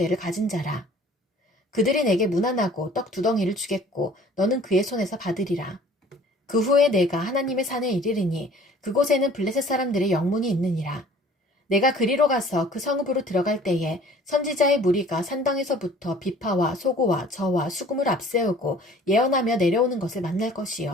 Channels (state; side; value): normal; both; correlation 0.51